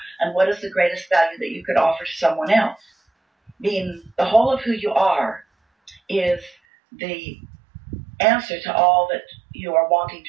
And what is the greatest value that you could offer to someone else? Being the whole of who you are is the answer to all that you are wanting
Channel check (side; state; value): left; drops out; at 6.6 s